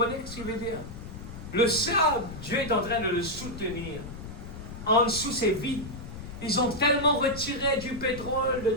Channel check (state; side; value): noise; left; rumble, 11 dB below the sound